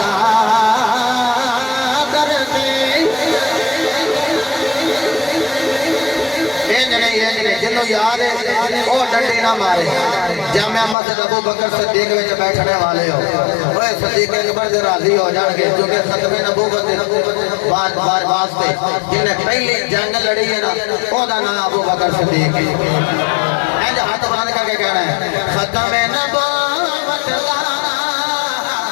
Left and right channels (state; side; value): drops out; right; at 11.0 s